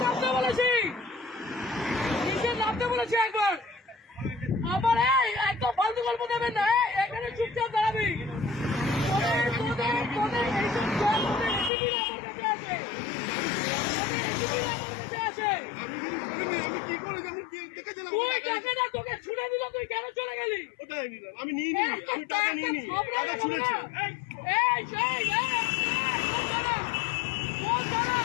নামতে বলেছি, নিচে নামতে বলেছি একবার। আমার একদম ফালতু গল্প দেবেন না, এখানে চুপচাপ দাঁড়াবি। তোদের এইসব এসিপিরা আমার কাছে আছে, এসিপিরা আমার কাছে আছে। আমি কি করে যেমন দেখেছিলাম তুই টাকা না, তোকে ছুড়ে দিল, তুই কেন চলে গেলি? ওটাই নিলাম, আমি নিয়ে নিই, আমি টাকা নিয়ে নিই, টাকা ছুঁড়েছি।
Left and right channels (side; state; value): right; drops out; at 11.7 s